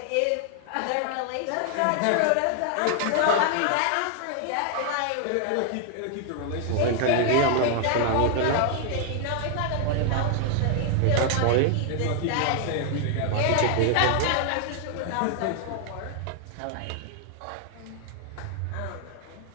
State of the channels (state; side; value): different; both; correlation 0.00